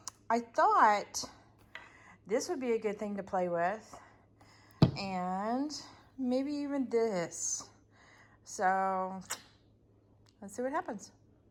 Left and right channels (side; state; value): both; identical; correlation 1.00